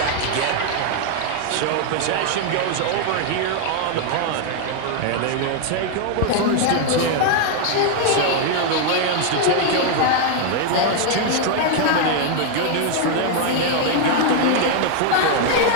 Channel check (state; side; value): different; both; correlation 0.00